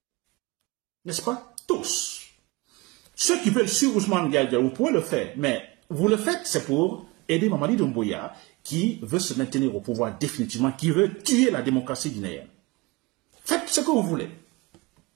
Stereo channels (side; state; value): left; quieter; 23.6 dB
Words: N'est-ce pas? Tous. Ceux qui veulent suivre Ousmane Gawal Diallo, vous pouvez le faire. Mais vous le faites, c'est pour aider Mamadi Doumbouya, qui veut se maintenir au pouvoir définitivement, qui veut tuer la démocratie guinéenne. Faites ce que vous voulez.